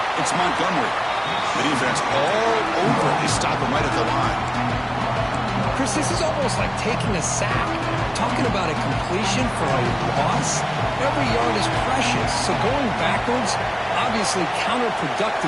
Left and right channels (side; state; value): both; identical; correlation 1.00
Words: It's Montgomery. The defense all over. They stop him right at the line. Chris, this is almost like taking a sack. Talking about a completion for a loss, every yard is precious. So going backwards, obviously